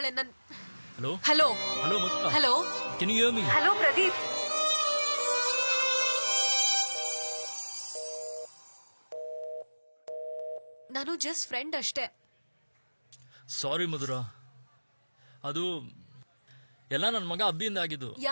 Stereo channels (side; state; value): both; inverted; correlation -1.00